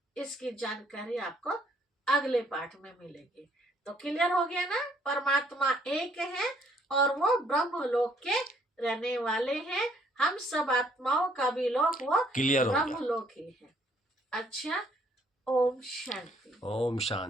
इसकी जानकारी आपको अगले पाठ में मिलेगी। तो क्लियर हो गया ना? परमात्मा एक है और वो ब्रह्मलोक के रहने वाले हैं। हम सब आत्माओं का भी लोक वो ब्रह्मलोक ही है। अच्छा, ओम शांति। ओम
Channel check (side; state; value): both; normal; correlation 0.65